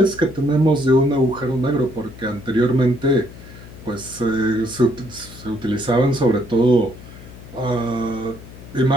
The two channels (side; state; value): left; noise; hum, 17 dB below the sound